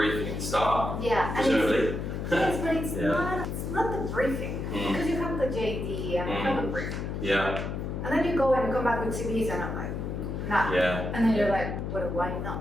at the start. Presumably. Yes, but it's not the briefing because you have the JD and you have a briefing. And then you go and come back with CVs and I'm like, nah. And then you're like, well, why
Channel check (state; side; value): noise; left; hum, 4 dB below the sound